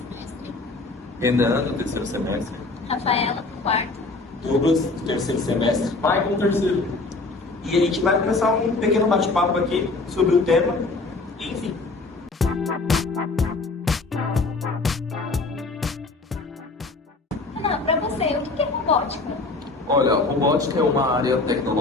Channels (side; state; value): right; quieter; 3.5 dB